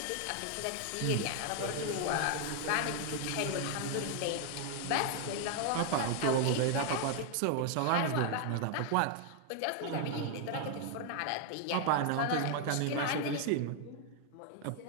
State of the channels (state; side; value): different; both; correlation 0.00